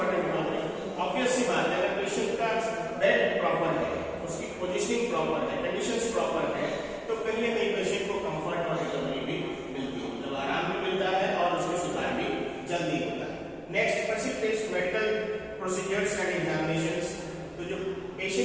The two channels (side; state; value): both; identical; correlation 1.00